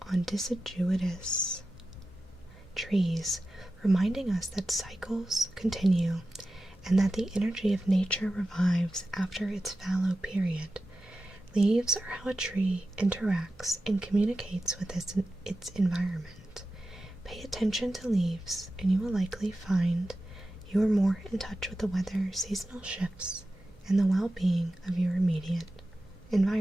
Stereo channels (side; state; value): both; normal; correlation 0.93